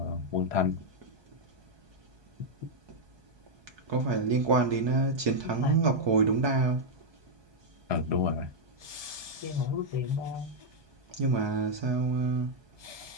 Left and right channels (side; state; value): left; late; 1.2 ms